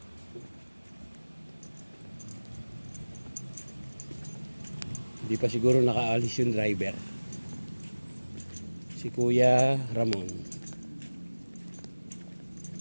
Hindi pa siguro nakaalis yung driver. Si Kuya Ramon.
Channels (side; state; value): both; inverted; correlation -1.00